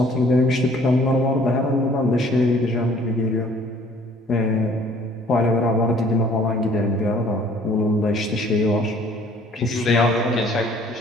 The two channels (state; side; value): normal; both; correlation 0.56